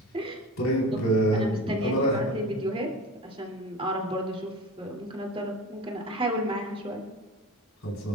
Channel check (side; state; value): both; normal; correlation 0.34